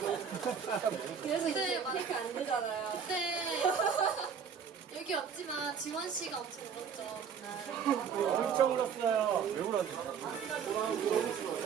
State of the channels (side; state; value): left; quieter; 7.0 dB